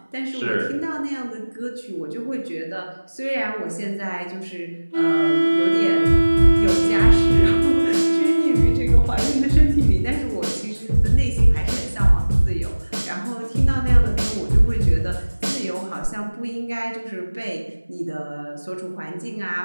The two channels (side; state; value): both; inverted; correlation -1.00